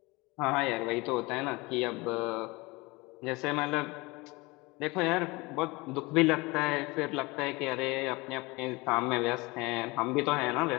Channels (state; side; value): quieter; right; 24.0 dB